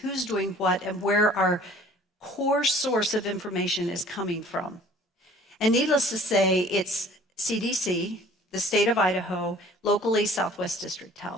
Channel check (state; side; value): normal; both; correlation 0.51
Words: doing what, and where our core source of information is coming from. And needless to say, it's CDC, the state of Idaho, locally Southwest District